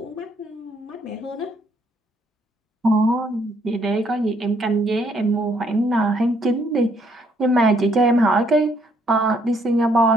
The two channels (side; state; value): both; normal; correlation 0.68